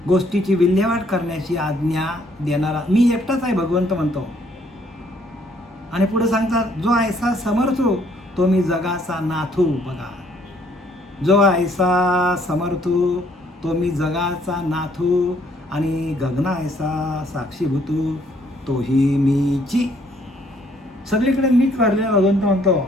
गोष्टीची विल्हेवाट करण्याची आज्ञा देणारा मी एकटाच आहे भगवंत म्हणतो. आणि पुढे सांगतात जो ऐसा समर्थो तो मी जगाचा नाथू. बघा, जो ऐसा समर्थो तो मी जगाचा नाथू आणि गगना ऐसा साक्षीभूतू तोही मीची. सगळीकडे मीच भरलेला भगवंत म्हणतो.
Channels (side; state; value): both; normal; correlation 0.65